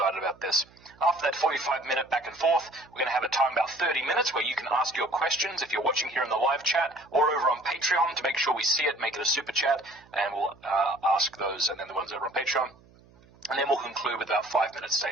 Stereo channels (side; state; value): right; noise; hum, 27 dB below the sound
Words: about this. After that 45-minute back and forth, we're going to have a time about 30 minutes where you can ask your questions if you're watching here in the live chat or over on Patreon to make sure we see it, make it a super chat, and we'll ask those, and then the ones over on Patreon. And then we'll conclude with about 5-minute